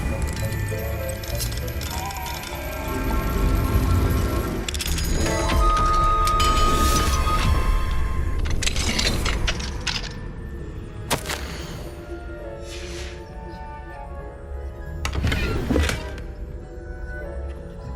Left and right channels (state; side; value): identical; both; correlation 1.00